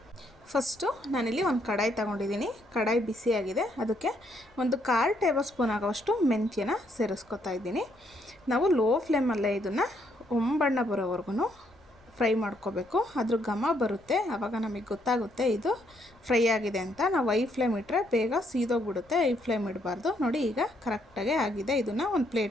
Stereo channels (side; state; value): left; noise; rumble, 30 dB below the sound